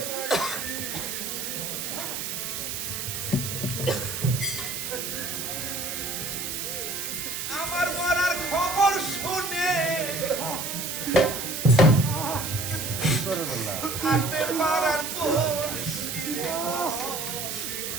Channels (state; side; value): noise; right; hiss, 4 dB below the sound